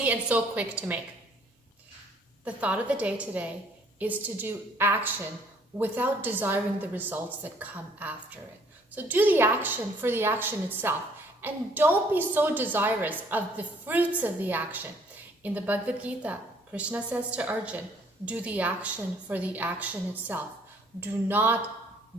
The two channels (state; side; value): normal; both; correlation 0.61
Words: and so quick to make. The thought of the day today is to do action without desiring the results that come after it. So do the action for the action itself. And don't be so desirous of the fruits of the action. In the Bhagavad Gita, Krishna says to Arjuna, do the action for the action itself. Do not